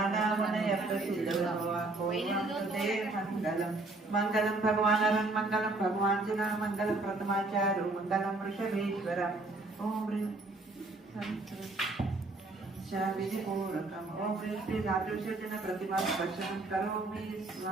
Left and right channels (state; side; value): quieter; left; 3.1 dB